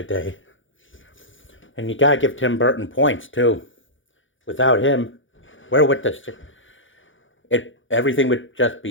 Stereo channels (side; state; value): right; late; 0.56 ms